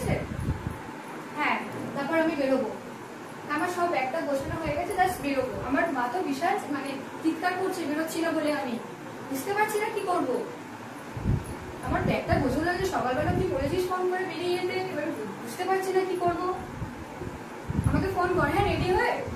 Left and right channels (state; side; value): identical; both; correlation 1.00